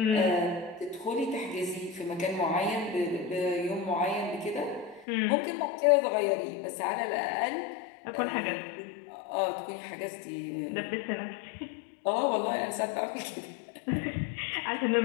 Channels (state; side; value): drops out; right; at 5.1 s